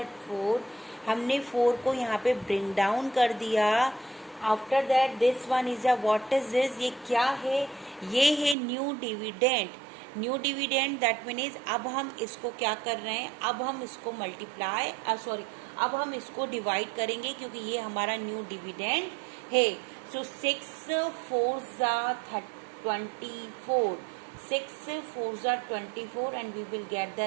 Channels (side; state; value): left; drops out; at 8.6 s